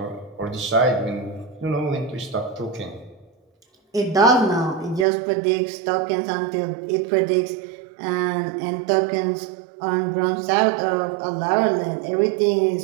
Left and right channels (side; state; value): left; drops out; at 5.1 s